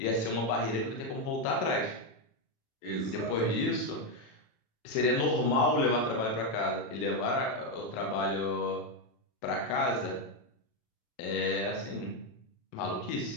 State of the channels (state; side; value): late; right; 27 ms